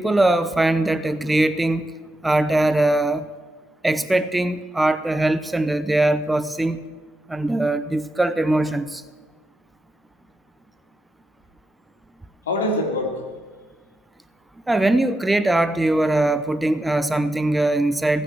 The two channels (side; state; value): both; normal; correlation 0.87